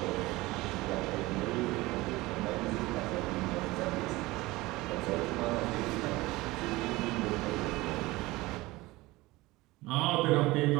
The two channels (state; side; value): quieter; left; 20.3 dB